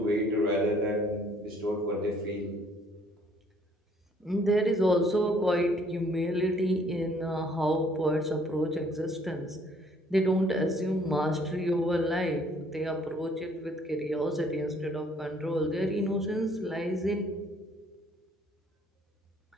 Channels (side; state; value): both; normal; correlation 0.62